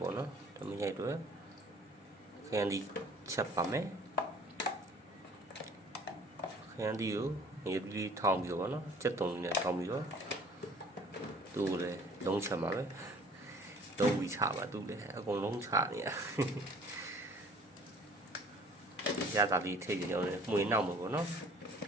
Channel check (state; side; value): normal; both; correlation 0.52